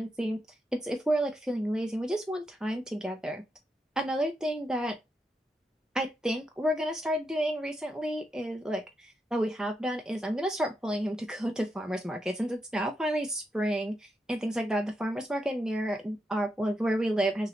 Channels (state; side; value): normal; both; correlation 0.84